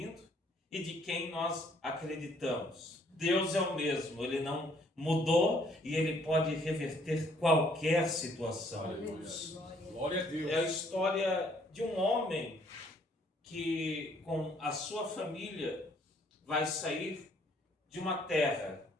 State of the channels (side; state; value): both; normal; correlation 0.64